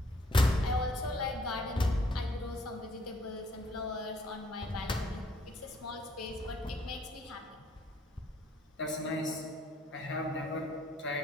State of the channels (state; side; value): normal; both; correlation 0.65